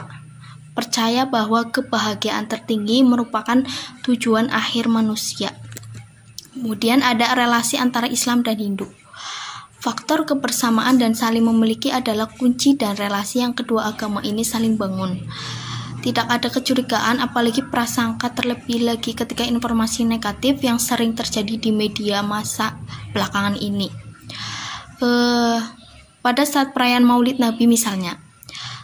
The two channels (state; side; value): identical; both; correlation 1.00